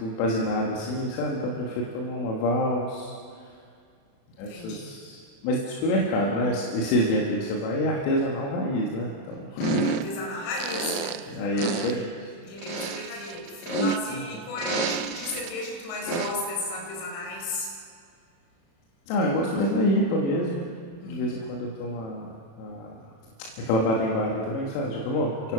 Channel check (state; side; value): late; right; 36 ms